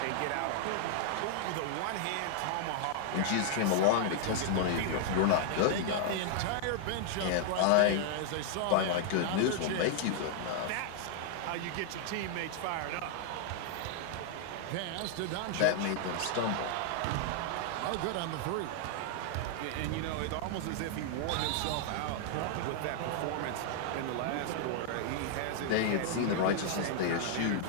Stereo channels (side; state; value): both; different; correlation 0.00